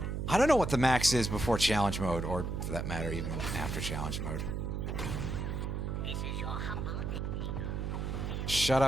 I don't know what the max is before challenge mode, or for that matter, even after challenge mode. Shut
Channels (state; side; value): noise; right; hum, 2 dB below the sound